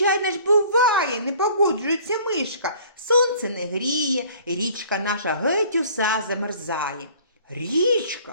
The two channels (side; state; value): both; inverted; correlation -0.52